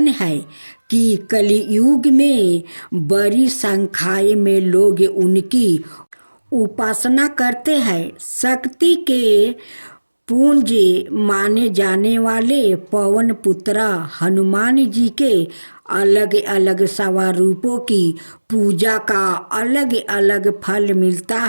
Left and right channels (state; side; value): inverted; both; correlation -1.00